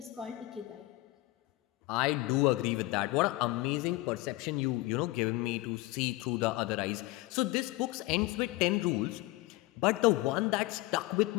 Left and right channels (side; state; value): right; quieter; 20.0 dB